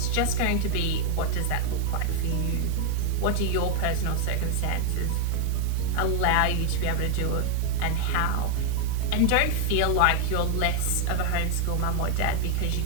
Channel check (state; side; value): different; both; correlation 0.00